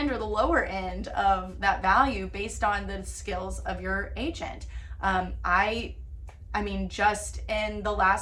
or the lower end of that value based on the skills of your agent. I mean, just in the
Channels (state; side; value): identical; both; correlation 1.00